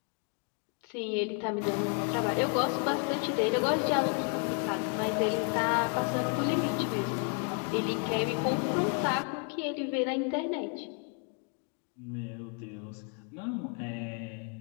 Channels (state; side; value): quieter; right; 39.4 dB